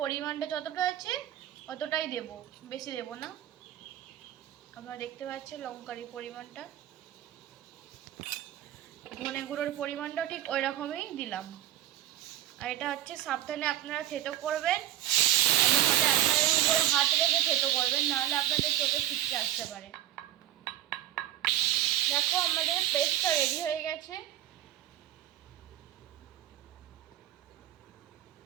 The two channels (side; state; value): left; quieter; 12.6 dB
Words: পরিমাণটা যতটা আছে অতটাই দেব, বেশি দেব না। আপনারা দেখতে পাচ্ছেন লঙ্কার পরিমাণটা, ধনে গুঁড়োর পরিমাণটাও ঠিক ওই রকমই দিলাম। আর এটা সাবধানে আপনারা থেতো করবেন, এমন হলে আপনাদের উপরে হাত রেখে থেতো করবেন, নাহলে আপনাদের চোখে ছিটকে আসতে পারে। দেখো, আমাদের পেস্টটা রেডি হয়ে গেছে।